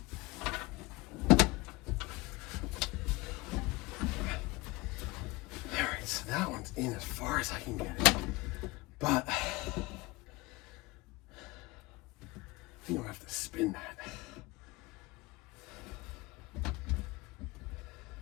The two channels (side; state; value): right; quieter; 22.6 dB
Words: So that one's in as far as I can get it, but I think I'll have to spin that.